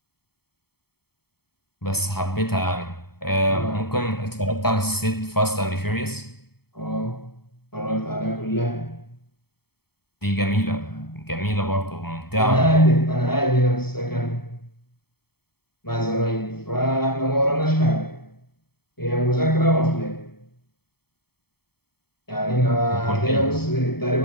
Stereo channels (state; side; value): late; right; 0.96 ms